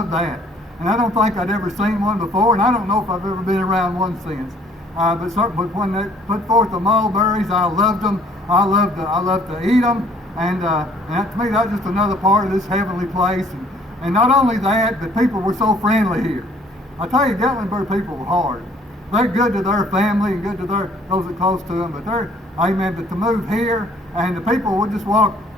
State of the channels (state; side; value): normal; both; correlation 0.59